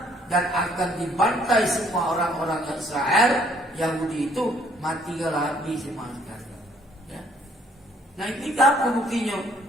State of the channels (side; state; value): both; normal; correlation 0.63